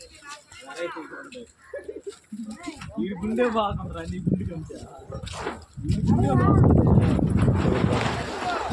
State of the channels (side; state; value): both; identical; correlation 1.00